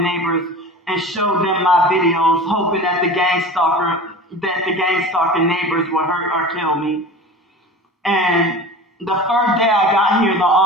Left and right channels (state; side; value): normal; both; correlation 0.36